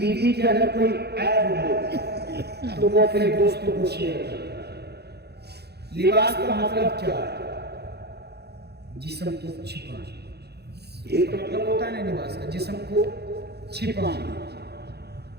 کے اندر کوئی عیب ہو تو وہ اپنے دوستوں کو شیئر کرتا ہے۔ لباس کا مطلب کیا ہے؟ جسم کو چھپانا، یہ تو مطلب ہوتا ہے نا لباس کا، جسم کو چھپانا۔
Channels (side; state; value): left; late; 0.48 ms